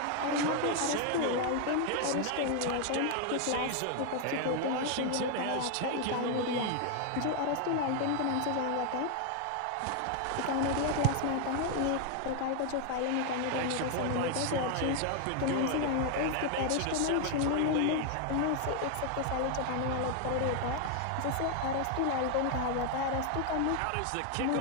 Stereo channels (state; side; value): different; both; correlation 0.00